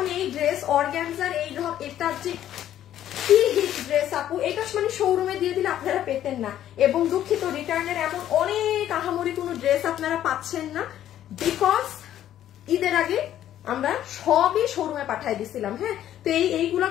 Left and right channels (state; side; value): quieter; right; 11.6 dB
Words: এই ড্রেস অর্গানজার এই এটা যে কি হিট ড্রেস আপু, এটা মানে শোরুমে দিয়ে দিলে আপনারা পেতেন না। এবং দুঃখিত রিটার্নের এমন অনেক আহামরি কোনো ড্রেস আপনারা পাচ্ছেন না বিকজ ঈদের আগে আমরা সবই শোরুমে পাঠাই দিছিলাম। হ্যাঁ তো এইগুলা